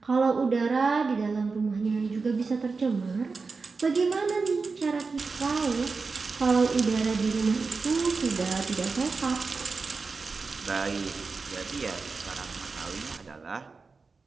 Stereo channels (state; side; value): quieter; left; 4.4 dB